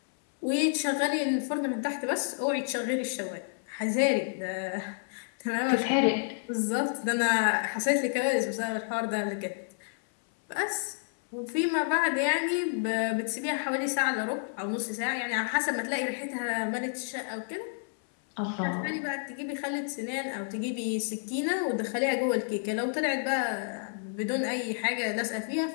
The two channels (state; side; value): silent; right; 58 dB below the other